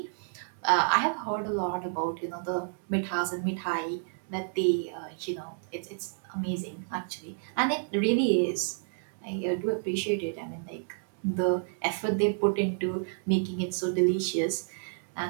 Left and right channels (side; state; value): left; silent; digital silence